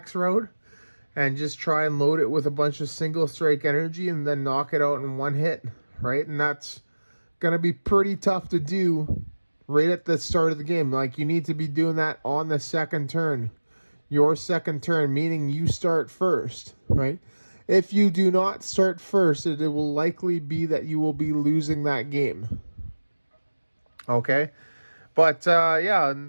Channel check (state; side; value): inverted; both; correlation -1.00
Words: route and just try and load it with a bunch of single strike energy and then knock it out in one hit, right? And that's going to be pretty tough to do right at the start of the game. Like, you need to be doing that on the second turn. Your second turn, meaning you start first, right? If you do not start first, it will likely be that you will be losing that game. Okay? But yeah,